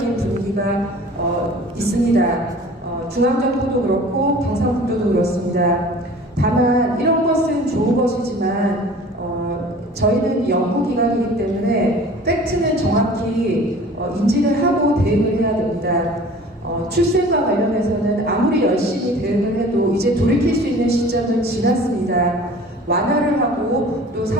분위기가 있습니다. 중앙정부도 그렇고 경상북도도 그렇습니다. 다만 이런 것은 좋은 것이지만 저희는 연구기관이기 때문에 팩트는 정확히 인지를 하고 대응을 해야 됩니다. 출생과 관련해서는 아무리 열심히 대응을 해도 이제 돌이킬 수 있는 시점은 지났습니다. 완화를 하고 또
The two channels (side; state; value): both; normal; correlation 0.45